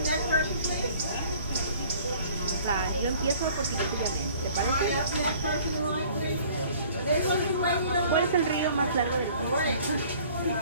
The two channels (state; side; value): inverted; both; correlation -0.52